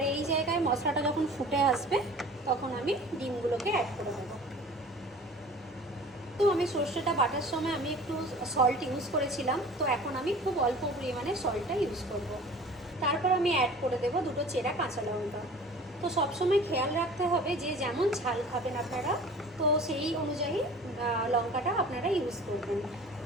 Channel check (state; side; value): normal; both; correlation 0.44